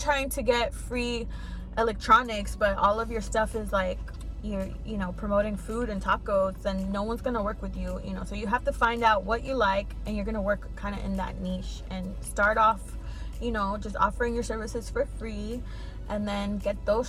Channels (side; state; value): both; identical; correlation 1.00